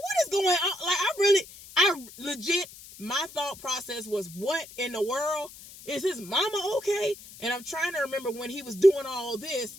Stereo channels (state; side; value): noise; left; hiss, 18 dB below the sound